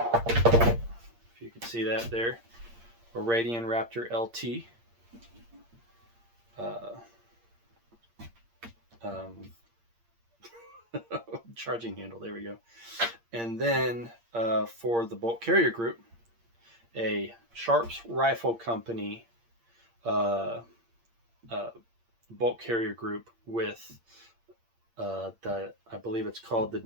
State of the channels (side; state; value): left; late; 8.6 ms